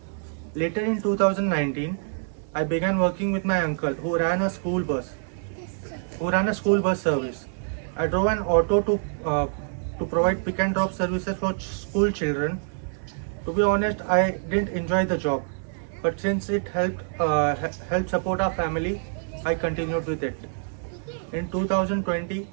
Later in 2019, I began working with my uncle who ran a school bus service. I drove an auto to provide pick and drop services for school children. To be honest, I didn't enjoy the job, but since it helped support our family, I continued with it. In 2020,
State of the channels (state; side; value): silent; left; 61 dB below the other